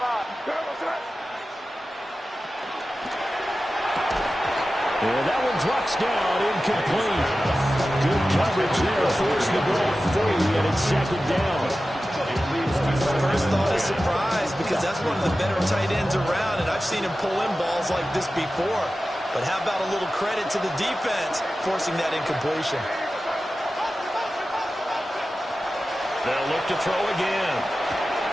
And that one drops down, incomplete. Good coverage there, forced the ball free, and it's second down. First thought is surprise because that's one of the better tight ends around, and I've seen him pull in balls like this before. But how about a little credit to the defense forcing that incompletion? They'll look to throw again.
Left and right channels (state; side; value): normal; both; correlation 0.94